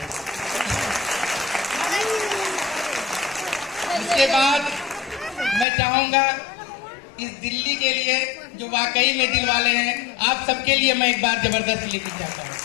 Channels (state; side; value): drops out; right; at 5.7 s